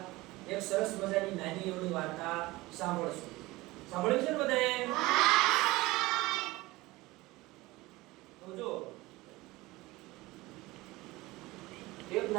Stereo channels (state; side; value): quieter; left; 20.2 dB